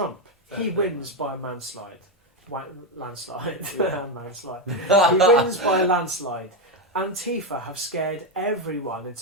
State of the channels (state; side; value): normal; both; correlation 0.08